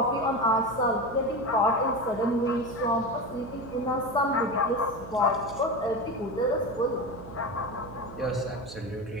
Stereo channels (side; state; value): right; noise; hum, 15 dB below the sound